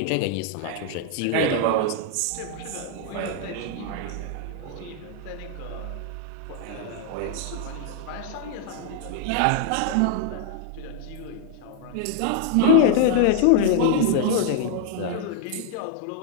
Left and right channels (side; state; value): both; different; correlation 0.00